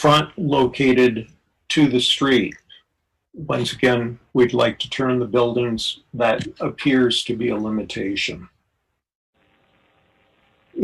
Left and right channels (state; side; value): identical; both; correlation 1.00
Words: located to the street. Once again, we'd like to turn the buildings. That appears to be a limitation.